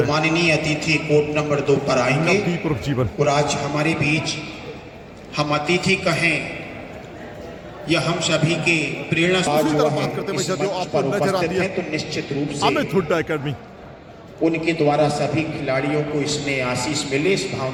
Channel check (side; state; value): both; identical; correlation 1.00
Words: माननीय अतिथि कोर्ट नंबर 2 पर आएंगे। नवदीप उर्फ जीवन और आज हमारे बीच हम अतिथि कहें या हम सभी के प्रेरणा बात करते हैं जो आपको नजर आती है तो निश्चित रूप से अमित हुड्डा एकेडमी उनके द्वारा सभी खिलाड़ियों को इसमें आशीष मिले, इस